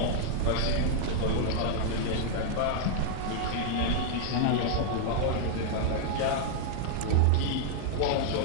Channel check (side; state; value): both; different; correlation -0.01